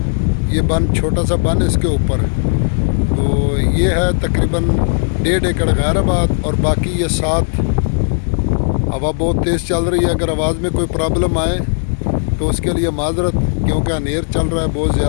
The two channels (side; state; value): right; silent; digital silence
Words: یہ بن، چھوٹا سا بن اس کے اوپر، تو یہ ہے تقریباً 1.5 ایکڑ غیر آباد، اور باقی یہ 7۔ ہوا بہت تیز چل رہی ہے، اگر آواز میں کوئی پرابلم آئے تو اس کے لیے معذرت، کیونکہ انیر چل رہا ہے بہت